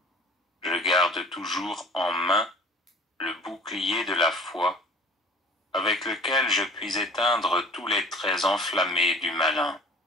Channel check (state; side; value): normal; both; correlation 0.45